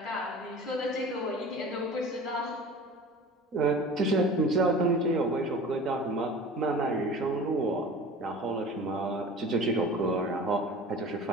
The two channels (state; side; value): normal; both; correlation 0.39